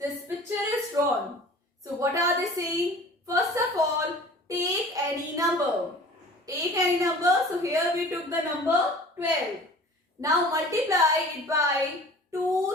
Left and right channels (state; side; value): normal; both; correlation 0.44